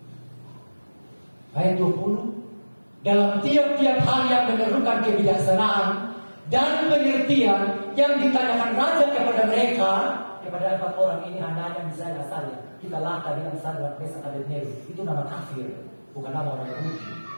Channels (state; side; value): inverted; both; correlation -1.00